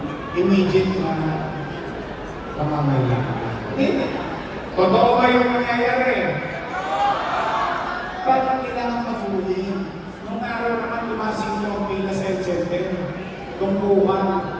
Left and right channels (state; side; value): identical; both; correlation 1.00